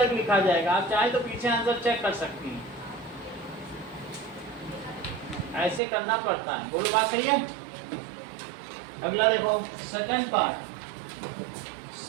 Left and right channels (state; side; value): drops out; left; at 5.8 s